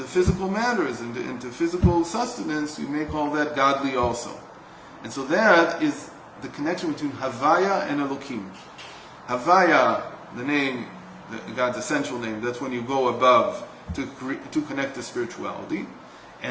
physical matters, into physical sustenance, you make all that godly also. And so that is the connection between Havaya and Elokim. Havaya, the name, God's essential name, that's when you go above to connect to spirituality.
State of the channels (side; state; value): both; identical; correlation 1.00